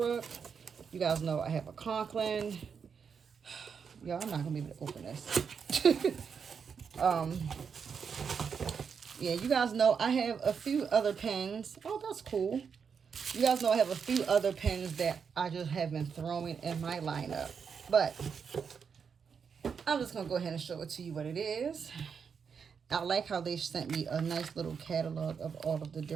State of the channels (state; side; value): quieter; left; 6.4 dB